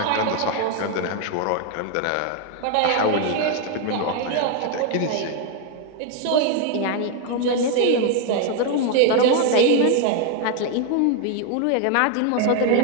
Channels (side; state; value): both; different; correlation 0.01